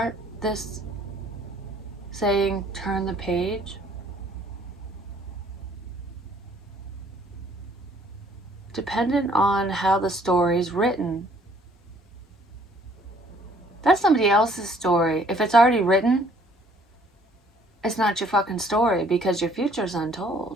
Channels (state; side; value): normal; both; correlation 0.60